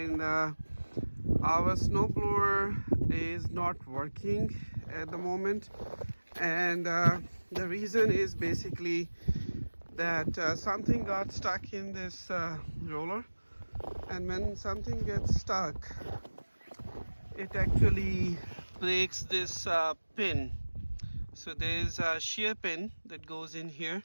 our snowblower is not working at the moment, and the reason is basically that something got stuck in this roller, and when something gets stuck, it actually breaks this pin. So there's a shear pin that goes in here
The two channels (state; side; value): inverted; both; correlation -1.00